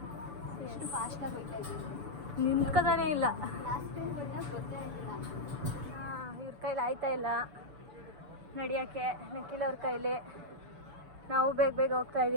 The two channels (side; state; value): left; late; 6.9 ms